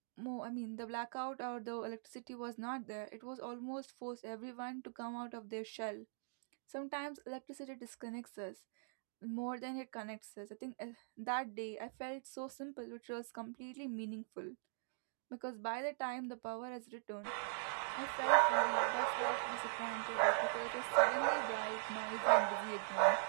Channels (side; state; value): left; silent; digital silence